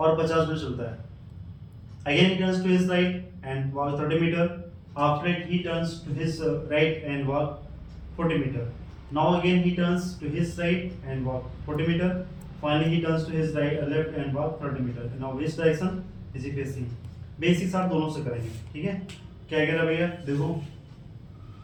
50 मीटर चलता है। Again he turns to his right and walk 30 meter, after it he turns to his right and walk 40 meter. Now again he turns to his right and walk 40 meter, finally he turns to his right left and walk 30 meter. Now which direction is he facing? Basics आप दोनों से करेंगे, ठीक है। क्या कह रहा भैया, देखो,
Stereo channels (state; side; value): identical; both; correlation 1.00